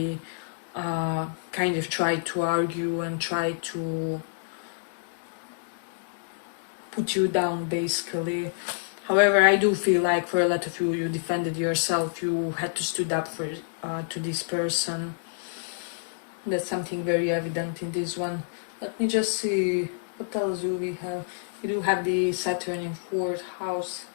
kind of tried to argue and try to put you down basically. However, I do feel like for a lot of you, you defended yourself, you had to stood up for to this person. That's something very evident in this one. Let me just see, what else do we have? We do have the Saturn in 4th house.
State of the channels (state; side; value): silent; right; digital silence